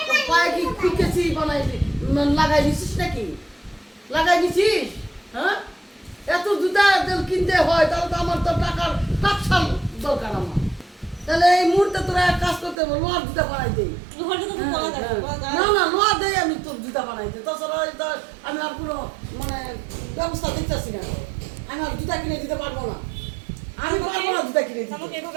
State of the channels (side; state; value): left; drops out; at 12.8 s